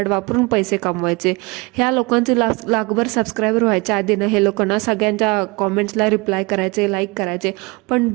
वापरून पैसे कमवायचे. ह्या लोकांचे लाखभर सबस्क्रायबर व्हायच्या आधी ना हे लोकांना सगळ्यांच्या कॉमेंट्सला रिप्लाय करायचे, लाईक करायचे. पण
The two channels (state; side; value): quieter; left; 26.3 dB